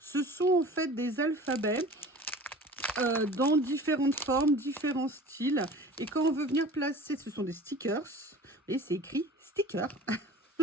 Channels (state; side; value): normal; both; correlation 0.42